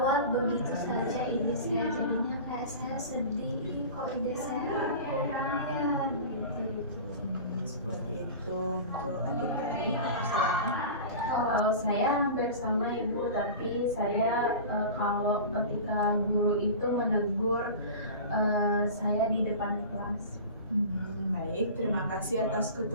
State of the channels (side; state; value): both; inverted; correlation -0.34